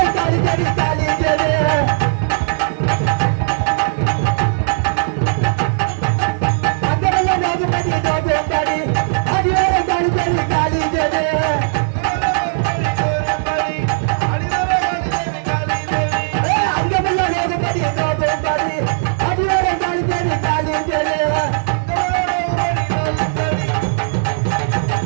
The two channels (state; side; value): silent; left; digital silence